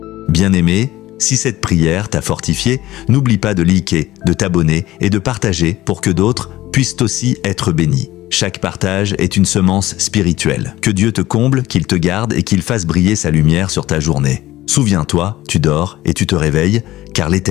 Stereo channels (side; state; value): right; quieter; 16.1 dB